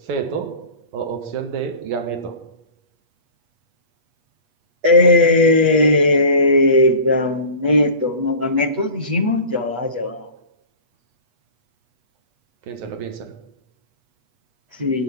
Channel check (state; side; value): late; left; 8.3 ms